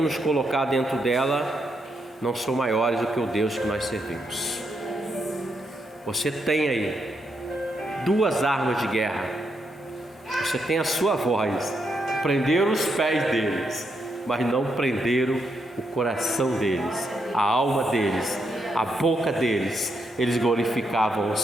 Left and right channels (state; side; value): normal; both; correlation 0.80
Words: nos colocar dentro dela não são maiores do que o Deus que nós servimos. Você tem aí duas armas de guerra. Você tem a sua voz. Prenderam os pés deles, mas não prenderam o coração deles, a alma deles, a boca deles. Eles glorificavam o